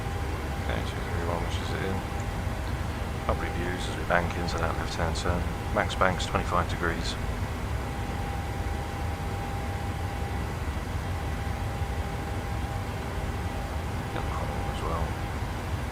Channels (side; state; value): both; identical; correlation 1.00